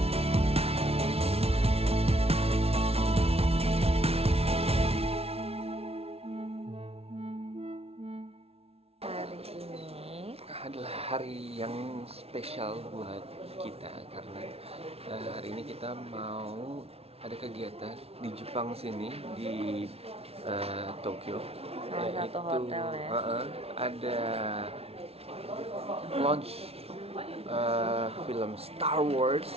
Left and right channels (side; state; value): left; late; 0.30 ms